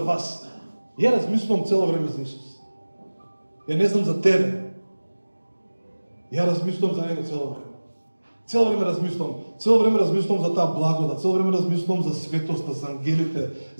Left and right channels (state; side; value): inverted; both; correlation -1.00